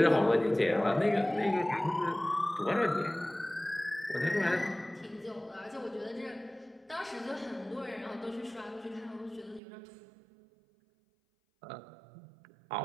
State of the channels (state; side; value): drops out; left; at 9.6 s